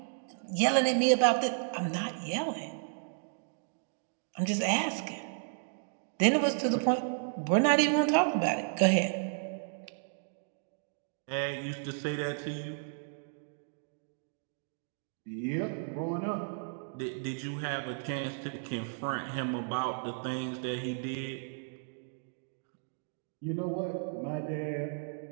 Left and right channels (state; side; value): silent; left; digital silence